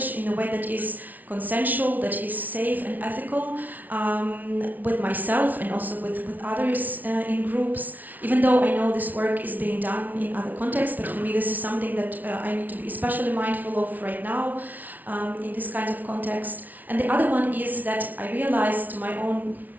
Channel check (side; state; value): left; late; 0.078 ms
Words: in a way that is consensual, that is safe and ethical, with myself and also with others in groups, even though I know this work is being done in other contexts, but for me this is something that I need to be especially mindful of right now in this kind of context. And the other one is that I realized, to my own